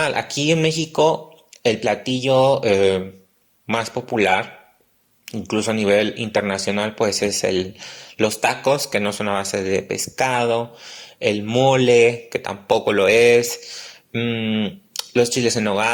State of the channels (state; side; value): identical; both; correlation 1.00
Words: Aquí en México el platillo más popular, incluso a nivel internacional, pues es los tacos, que no son a base de pescado, el mole, que tampoco lo es, los chiles en